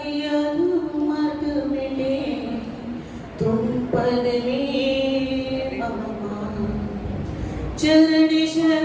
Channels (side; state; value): both; identical; correlation 1.00